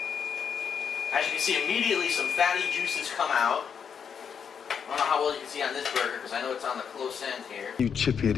As you can see, immediately some fatty juices come out. I don't know how well you can see on this burger because I know it's on the close end here. You chip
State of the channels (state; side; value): quieter; right; 7.1 dB